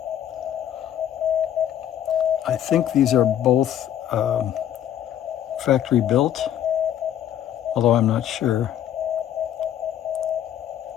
I think these are both factory built, although I'm not sure.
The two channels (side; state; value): right; quieter; 10.7 dB